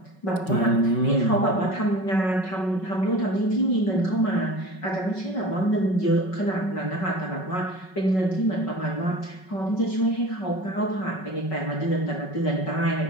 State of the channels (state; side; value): late; right; 5.3 ms